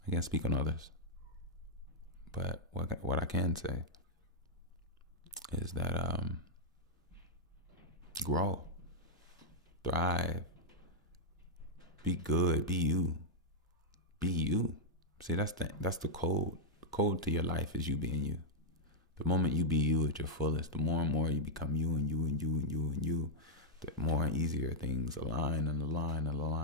I can't speak on others. But what I can say is that grow, thrive, be good, be you. Be you. See, that's the code. The code to your life is you being you. The moment you be you at your fullest, the more and more you become you and you and you and you and you, the more and easier things align and align and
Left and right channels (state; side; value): normal; both; correlation -0.06